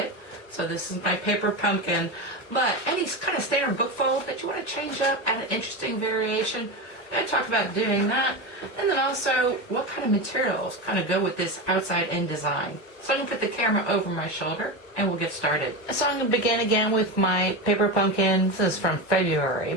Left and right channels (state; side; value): late; right; 1.1 ms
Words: So this is my paper pumpkin, but any kind of standard book fold that you want to change up, add an interesting variation, we're going to talk about doing that. And then also what kind of materials kind of go with this outside-in design. So I'm going to put the camera over my shoulder and we'll get started. So I'm going to begin again with my paper pumpkin. This is from February,